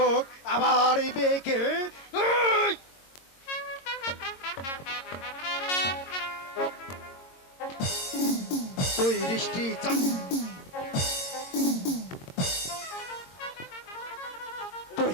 আমার এই মেয়েকে এই! তুই দৃষ্টি তুই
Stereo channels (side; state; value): right; late; 22 ms